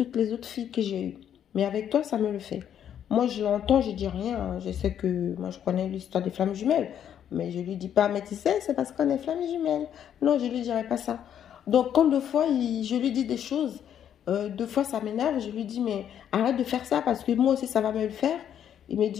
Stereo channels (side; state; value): right; quieter; 9.5 dB